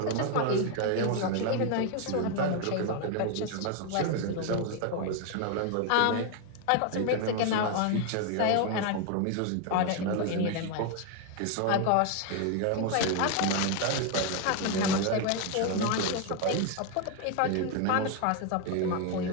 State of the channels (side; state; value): both; different; correlation 0.01